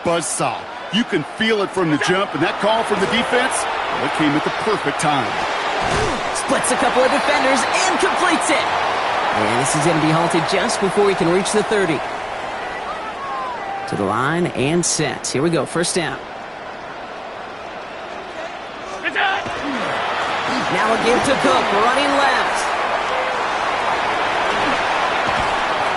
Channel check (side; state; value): both; identical; correlation 1.00